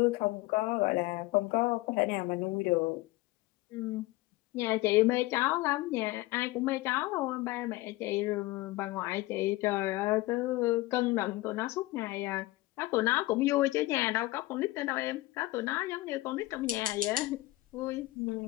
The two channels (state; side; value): quieter; right; 19.1 dB